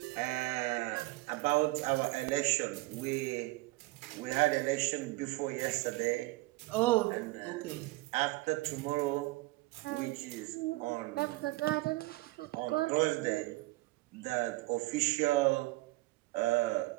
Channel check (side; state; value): left; quieter; 20.9 dB